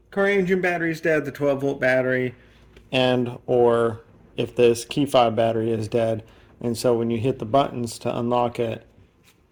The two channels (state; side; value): identical; both; correlation 1.00